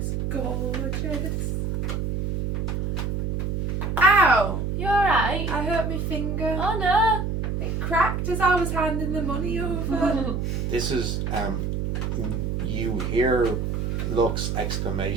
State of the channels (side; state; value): right; noise; hum, 1 dB below the sound